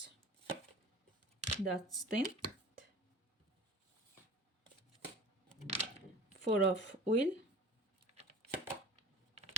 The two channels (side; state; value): both; normal; correlation 0.41